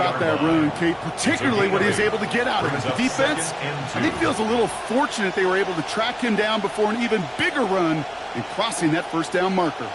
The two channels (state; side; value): identical; both; correlation 1.00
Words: that run, Kate, particularly what he was able to get out of it. The defense, I think, feels a little fortunate they were able to track him down before an even bigger run and crossing that 1st down marker.